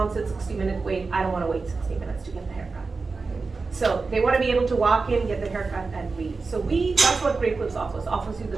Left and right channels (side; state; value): left; quieter; 4.2 dB